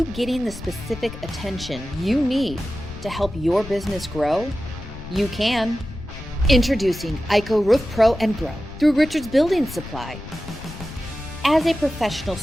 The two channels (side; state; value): left; noise; rumble, 13 dB below the sound